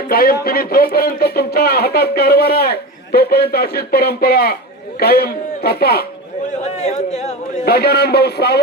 कायम तुम्ही जोपर्यंत तुमच्या हातात कारभार आहे तोपर्यंत अशीच परंपरा कायम जपा. गजानन भाऊ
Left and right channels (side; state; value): both; normal; correlation 0.25